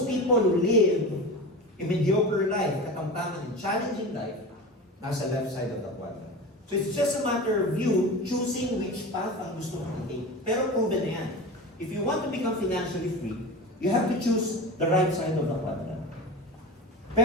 people who live a mediocre life, katamtaman and challenging life, nasa left side of the quadrant. So it's just a matter of you choosing which path ang gusto mong i-take. Pero proven na yan. If you want to become financially free, you have to choose the right side of the quadrant.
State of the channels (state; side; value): normal; both; correlation 0.29